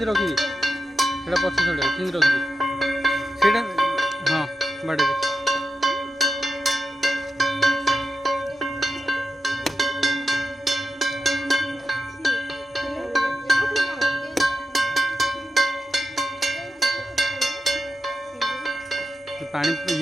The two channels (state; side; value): normal; both; correlation 0.89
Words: रखी सेटा पछ छोड़े सिंधी रखी सेटा हां बाड़े पानी